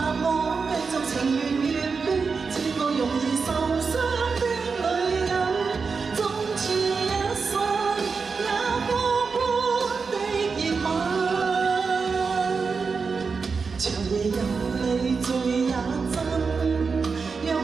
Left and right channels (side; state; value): left; quieter; 5.0 dB